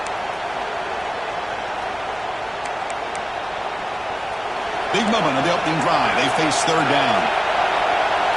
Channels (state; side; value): noise; right; hum, 28 dB below the sound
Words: Big moment of the opening drive. They face third down.